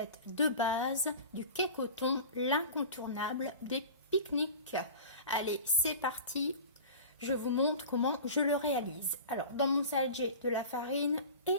de base du cake au thon, l'incontournable des pique-niques. Allez, c'est parti, je vous montre comment je le réalise. Alors, dans mon salade, j'ai de la farine et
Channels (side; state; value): both; inverted; correlation -0.36